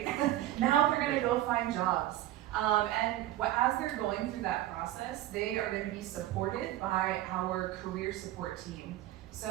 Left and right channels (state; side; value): quieter; left; 14.6 dB